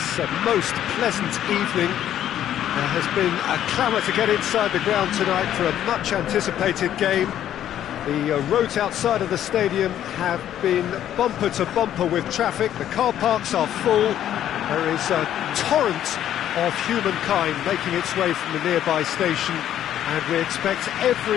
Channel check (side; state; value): right; quieter; 11.1 dB